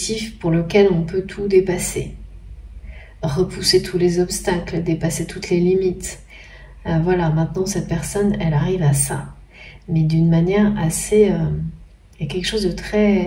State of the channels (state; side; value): identical; both; correlation 1.00